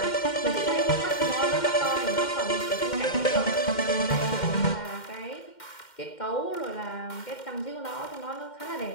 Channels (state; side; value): late; right; 2.1 ms